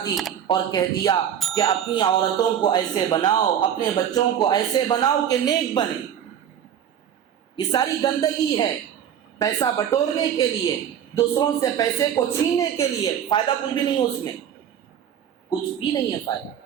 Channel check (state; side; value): quieter; left; 9.3 dB